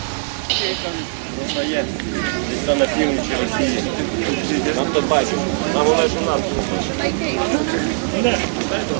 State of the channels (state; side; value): silent; left; 59 dB below the other